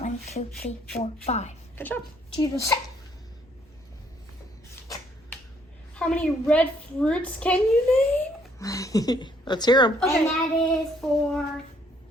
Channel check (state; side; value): normal; both; correlation 0.66